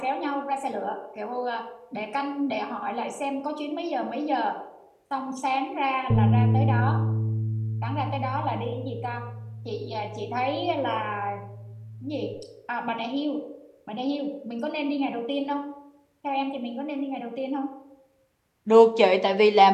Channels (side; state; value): both; identical; correlation 1.00